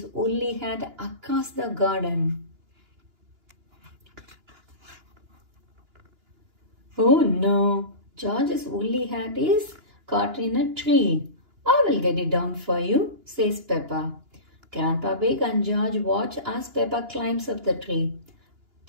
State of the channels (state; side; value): late; left; 2.9 ms